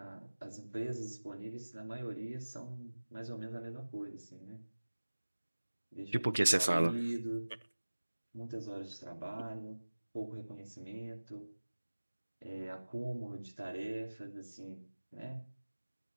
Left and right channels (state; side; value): inverted; both; correlation -1.00